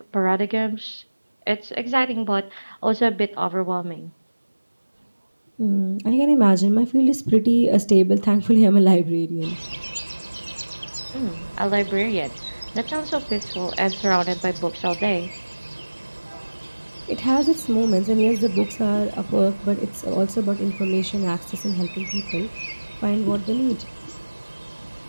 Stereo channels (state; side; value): inverted; both; correlation -1.00